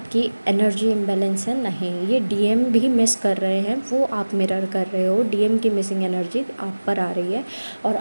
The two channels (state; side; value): inverted; both; correlation -1.00